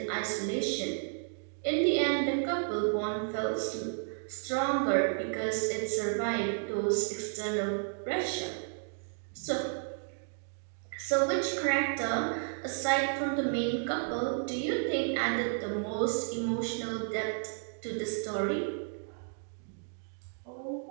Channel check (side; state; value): left; silent; digital silence